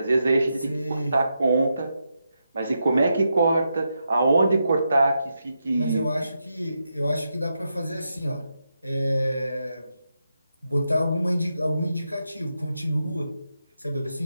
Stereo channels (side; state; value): both; inverted; correlation -0.85